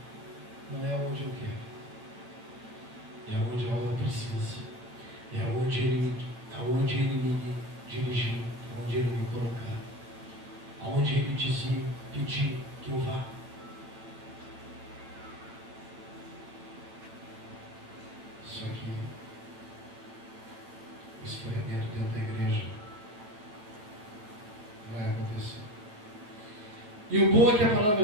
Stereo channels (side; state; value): left; late; 9.3 ms